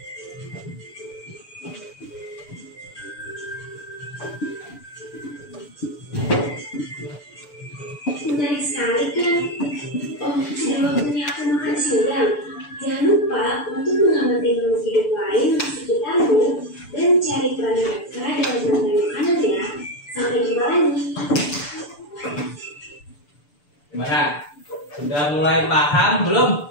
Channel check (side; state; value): right; late; 6.8 ms